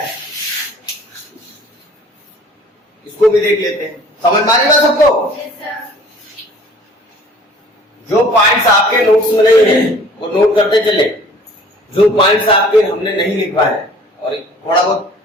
इसको भी देख लेते हैं। समझ में आ रही बात सबको? जो पॉइंट्स आपके नोट्स में नहीं है वो नोट करते चले, जो पॉइंट्स आपके हमने नहीं लिखवा है और थोड़ा बहुत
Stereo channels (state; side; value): normal; both; correlation 0.51